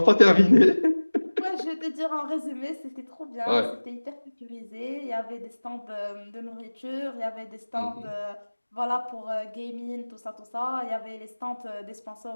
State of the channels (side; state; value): both; inverted; correlation -1.00